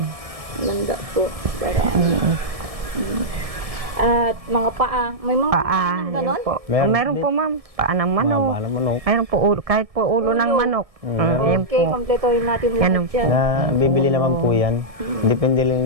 Ganda po. Para At mga paa. May mga Paa, ganon? yun po. Meron Meron po, ma'am. Paa ng manok. Mahaba ng manok. Mayroon po ulo, kahit po ulo ng manok. Yan Okay, po. kompletohin natin Ganun lahat yan. Na bibili naman po yan. Depende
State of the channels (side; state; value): left; late; 1.7 ms